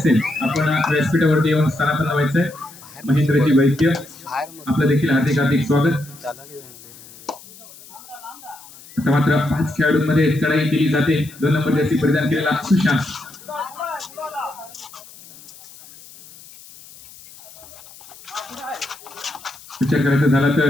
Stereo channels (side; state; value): left; noise; hiss, 20 dB below the sound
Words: आपण व्यासपीठावरती येऊन स्थानापन्न व्हायचंय. महेंद्रजी वैद्य आपलं देखील हार्दिक हार्दिक स्वागत. आता मात्र 5 खेळाडूंमध्ये चढाई केली जाते. 2 नंबर जर्सी परिधान केलेला सुशांत. विचार करायचा झाला